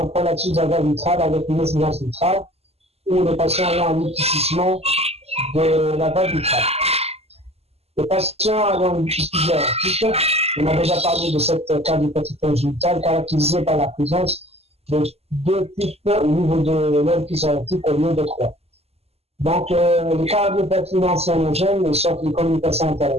prolapsus de la valve vitrale avec une incidence vitrale, ou les patients ayant un épaississement de la valve vitrale. Les patients ayant une suspicion aortique, on a déjà parlé de cette cardiopathie congénitale caractérisée par la présence de 2 pics au niveau de l'orifice aortique au lieu de 3. Donc, les cardiopathies non cyanogènes sortent des communications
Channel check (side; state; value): left; late; 0.29 ms